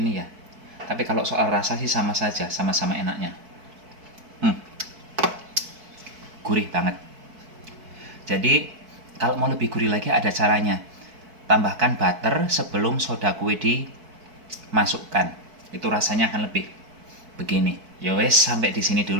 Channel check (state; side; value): late; left; 4.6 ms